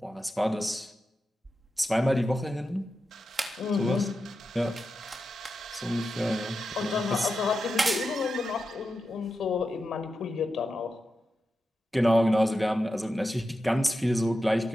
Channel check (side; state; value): both; normal; correlation 0.90